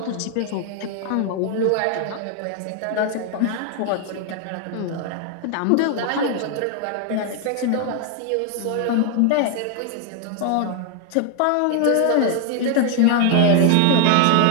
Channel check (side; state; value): both; different; correlation 0.00